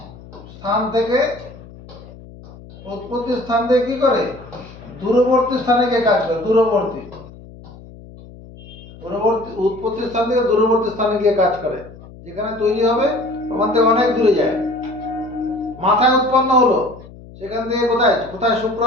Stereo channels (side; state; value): left; noise; hum, 19 dB below the sound